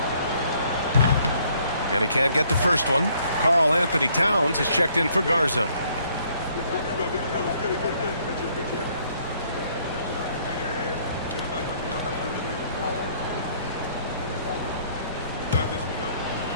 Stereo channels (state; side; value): inverted; both; correlation -0.64